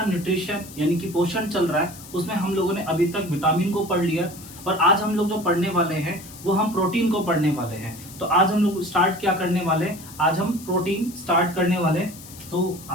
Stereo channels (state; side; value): noise; left; hiss, 17 dB below the sound